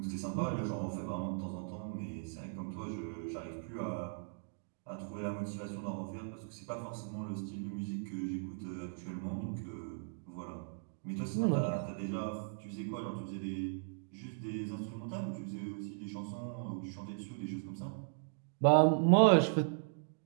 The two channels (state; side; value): silent; left; digital silence